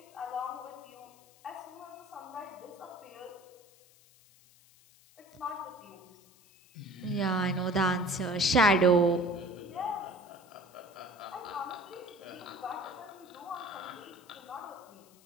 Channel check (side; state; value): left; noise; hiss, 27 dB below the sound